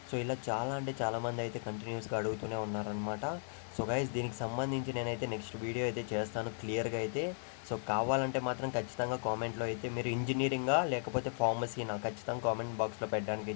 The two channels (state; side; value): silent; right; digital silence